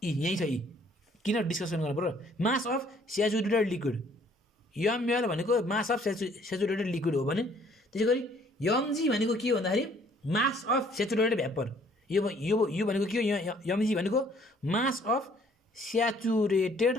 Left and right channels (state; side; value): normal; both; correlation 0.60